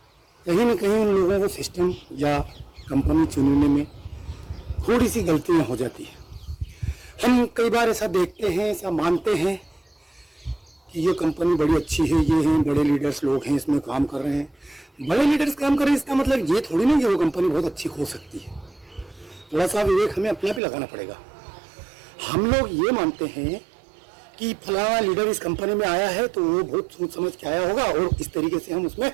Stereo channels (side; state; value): left; drops out; at 20.6 s